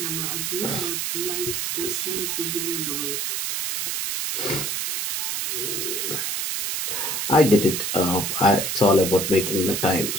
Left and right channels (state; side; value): noise; right; hiss, 1 dB below the sound